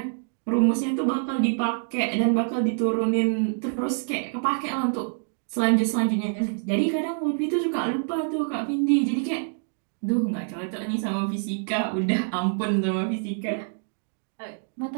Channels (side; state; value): left; silent; digital silence